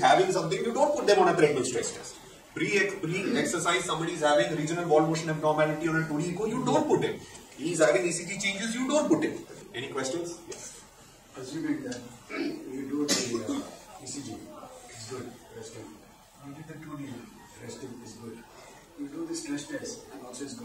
something, you don't put them on a treadmill stress test. Pre-exercise, somebody is having regional wall motion abnormality on a 2D echo, you don't put him. He is having ECG changes, you don't put him. Any questions? Yes. Assuming that you do the ECG, it's good, resting. You did the 2D, resting is good. You do the stress test, and also is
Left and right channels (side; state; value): both; identical; correlation 1.00